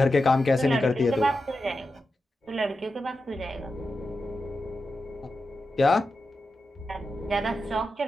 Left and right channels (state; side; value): normal; both; correlation 0.90